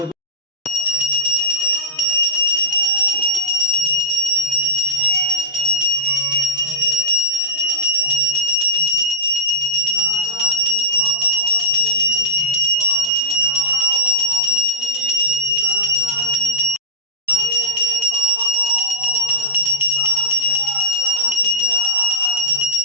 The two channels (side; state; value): both; normal; correlation -0.10